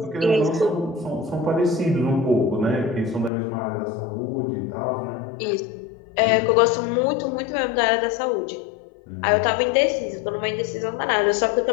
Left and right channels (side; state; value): right; drops out; at 3.3 s